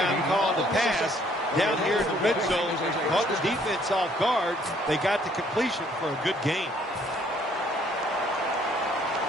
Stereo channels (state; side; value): normal; both; correlation 0.63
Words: calling the pass down here in the red zone. Caught the defense off guard. They got the completion for a good gain.